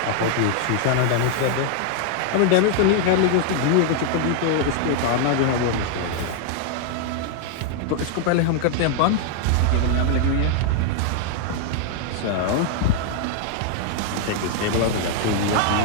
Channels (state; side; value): different; both; correlation 0.00